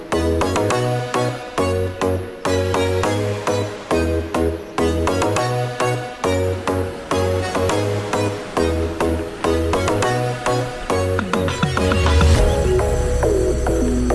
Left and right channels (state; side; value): identical; both; correlation 1.00